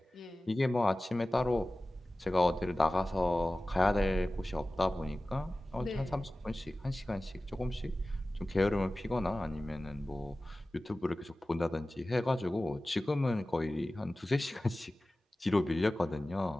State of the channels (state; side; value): normal; both; correlation 0.96